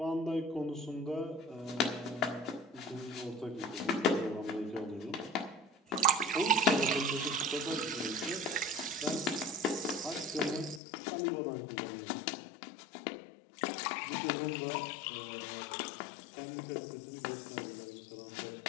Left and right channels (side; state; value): right; drops out; at 10.8 s